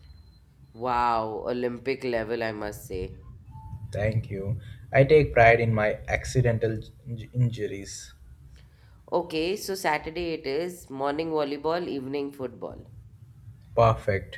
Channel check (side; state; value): both; identical; correlation 1.00